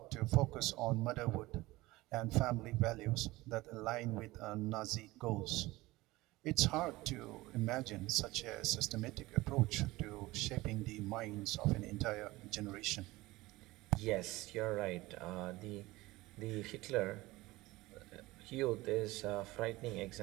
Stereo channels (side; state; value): left; quieter; 19.6 dB